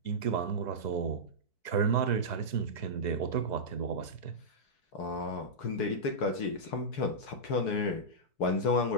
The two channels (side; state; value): right; late; 4.6 ms